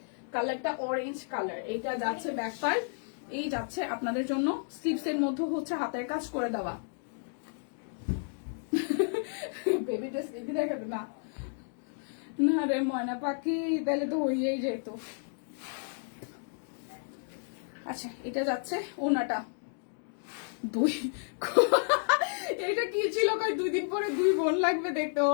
কালারটা অরেঞ্জ কালার। এইটা যাচ্ছে ব্যাক পার্ট, এই যাচ্ছে আপনাদের জন্য স্লিভস এর মধ্যে হচ্ছে হাতের কাজ করে দেওয়া। বেবি ড্রেস বেবি দেখাবে না, না রে ময়না পাখি, তাহলে তো হইয়াই যেত। আচ্ছা, এটা যাচ্ছে ওনাটা দুই, এটা কি ছিল কই 2 দিন পরে 2 বোন লাগবে দেখতে।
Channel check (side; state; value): right; silent; 57 dB below the other